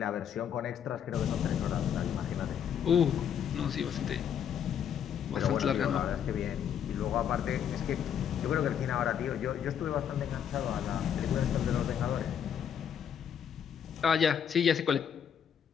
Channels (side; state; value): right; quieter; 8.6 dB